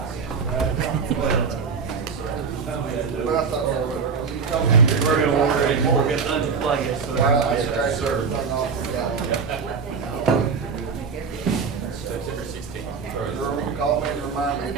But I thought that was, you told me. We're gonna order it, we're gonna unplug it, so. Well, that's great, sir. September 16th. You're call me and remind me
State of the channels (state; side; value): quieter; left; 5.5 dB